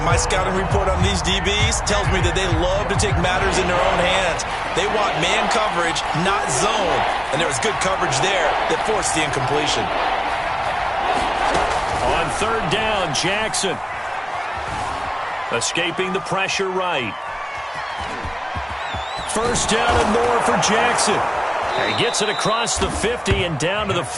my scouting report on these DBs tells me that they love to take matters in their own hands. They want man coverage, not zone. And there was good coverage there that forced the incompletion. On 3rd down, Jackson. Escaping the pressure right. 1st down and more for Jackson. And he gets it across the 50 and down to the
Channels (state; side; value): identical; both; correlation 1.00